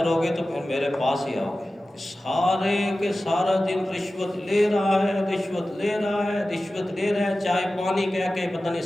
گے تو پھر میرے پاس ہی آؤ گے۔ سارے کے سارا دن رشوت لے رہا ہے، رشوت لے رہا ہے، رشوت لے رہا ہے، چائے پانی کہہ کے پتہ نہیں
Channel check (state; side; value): normal; both; correlation 0.95